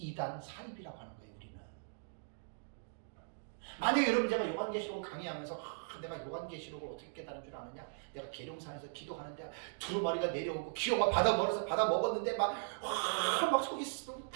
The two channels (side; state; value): left; silent; digital silence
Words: 사입이라고 하는 거예요. 우리는. 만약에 여러분 제가 요한계시록을 강의하면서 내가 요한계시록을 어떻게 깨달은 줄 아느냐? 내가 계룡산에서 기도하는데 두루마리가 내려오고 기어가 받아 먹었는데 막 속이